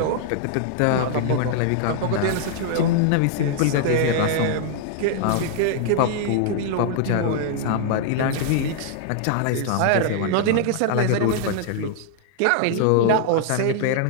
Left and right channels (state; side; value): different; both; correlation -0.01